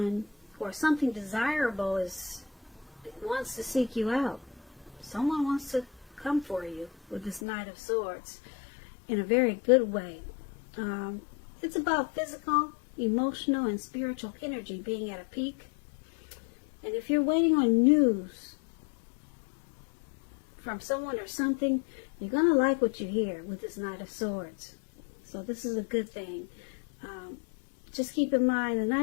or something desirable wants to seek you out. Someone wants to come for you with this Knight of Swords in a very good way. It's about physical, emotional, and spiritual energy being at a peak. And if you're waiting on news from someone or something, you're going to like what you hear with this Knight of Swords. So this is a good thing. Just keep in mind, the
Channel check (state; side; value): drops out; right; at 7.4 s